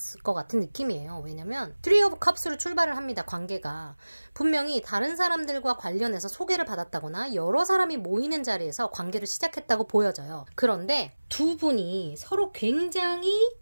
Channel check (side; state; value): both; inverted; correlation -1.00